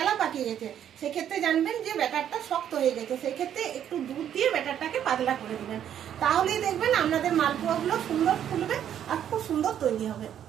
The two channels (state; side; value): quieter; left; 9.9 dB